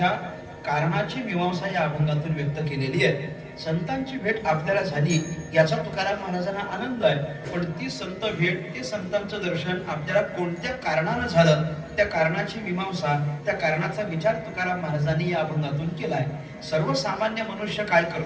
कारणाची मीमांसा या अभंगातून व्यक्त केलेली आहे. संतांची भेट आपल्याला झाली याचा तुकाराम महाराजांना आनंद आहे, पण ती संत भेट, ते संतांचं दर्शन आपल्याला कोणत्या कारणानं झालं, त्या कारणाची मीमांसा, त्या कारणाचा विचार तुकाराम महाराजांनी या अभंगातून केलाय. सर्वसामान्य मनुष्य काय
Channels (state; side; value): identical; both; correlation 1.00